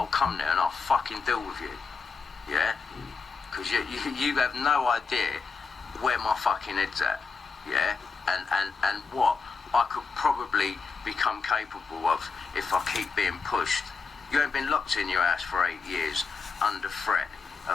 come there and I'll fucking deal with you. Yeah? Because you have no idea where my fucking head's at. Yeah? And what I could probably become capable of if I keep being pushed. You ain't been locked in your house for 8 years under threat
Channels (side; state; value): right; quieter; 4.9 dB